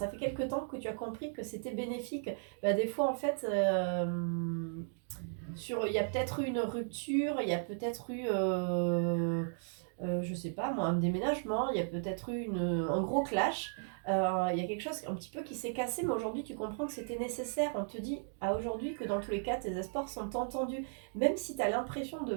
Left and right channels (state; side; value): silent; left; digital silence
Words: fait quelque temps que tu as compris que c'était bénéfique. Bah, des fois, en fait, il y a peut-être eu une rupture, il y a peut-être eu, je sais pas moi, un déménagement, il y a peut-être eu un gros clash. Il y a quelque chose un petit peu qui s'est cassé, mais aujourd'hui tu comprends que c'était nécessaire. On te dit à aujourd'hui que dans tous les cas, tes espoirs sont entendus. Même si tu as l'impression